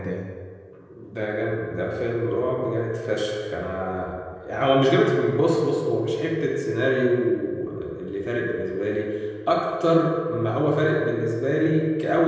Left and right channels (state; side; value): identical; both; correlation 1.00